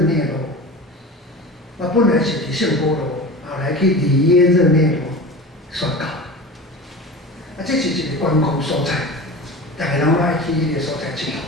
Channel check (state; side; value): normal; both; correlation 0.33